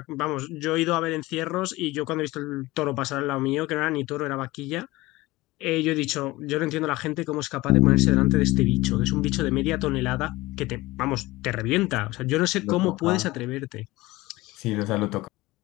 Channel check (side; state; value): right; quieter; 19.9 dB